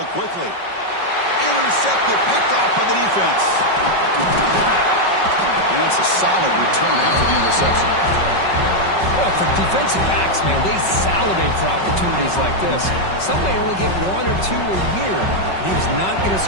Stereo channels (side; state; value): right; late; 5.3 ms